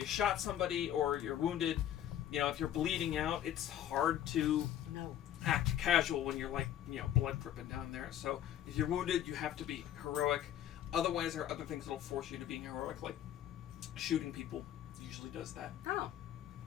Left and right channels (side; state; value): right; quieter; 11.1 dB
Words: shot somebody, or you're wounded. You know, if you're bleeding out, it's hard to act casual when you're like, blood dripping down there. So if you're wounded, you have to be heroic. Otherwise, there are other things that'll force you to being heroic, like shooting people usually does that. Oh.